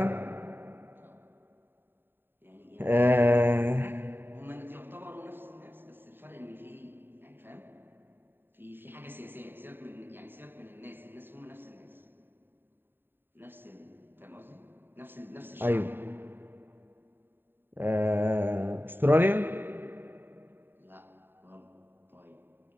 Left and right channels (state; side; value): late; left; 0.097 ms